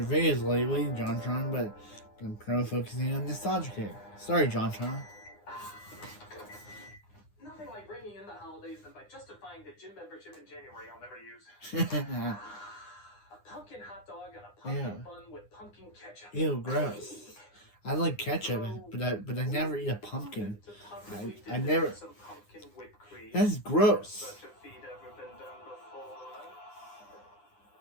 videos lately, JonTron, but I'm focusing on nostalgia here. Sorry, JonTron. Nothing like bringing in the holidays than by justifying the gym membership in January I'll never use. A pumpkin hot dog and a pumpkin bun with pumpkin ketchup. Ew, gross. I like ketchup, but I never eat a pumpkin. I never. That's gross.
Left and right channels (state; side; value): late; right; 9.8 ms